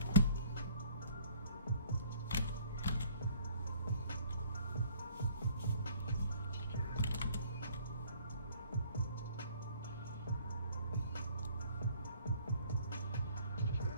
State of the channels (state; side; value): inverted; both; correlation -0.57